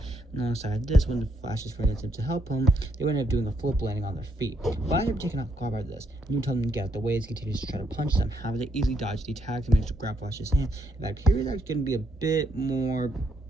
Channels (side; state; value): both; normal; correlation 0.74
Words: And alongside this, when the Flash's friend attempted to help him, they would end up doing a flip landing on their feet. Flash ended up taken off guard by this, and you tell them to get out the way as he continues to try to punch them. However, they easily dodged the attacks and managed to grab Flash's hand. In fact, Harry's actually going to be a bit more